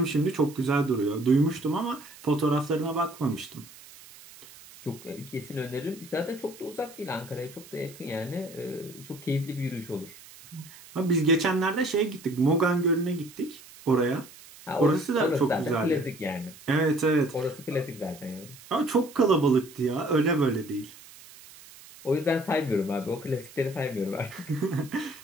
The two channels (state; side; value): noise; right; hiss, 20 dB below the sound